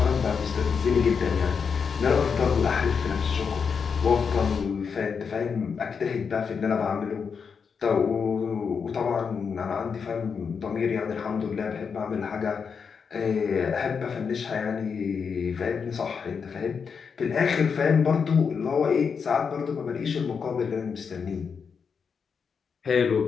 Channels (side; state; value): right; quieter; 6.1 dB